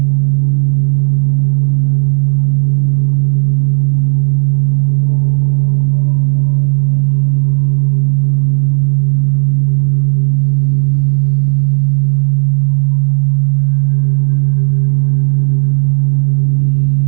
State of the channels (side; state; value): left; quieter; 34.0 dB